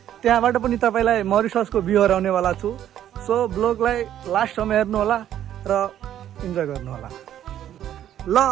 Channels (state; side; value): quieter; left; 11.2 dB